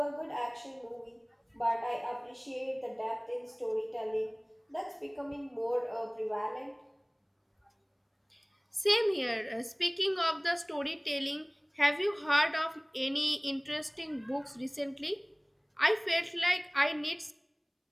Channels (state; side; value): identical; both; correlation 1.00